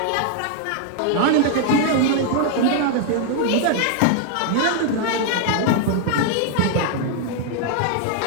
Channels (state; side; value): different; both; correlation 0.00